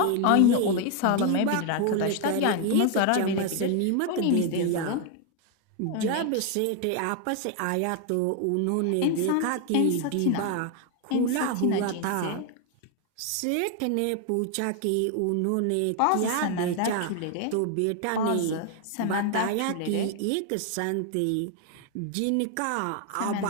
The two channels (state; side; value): different; both; correlation 0.01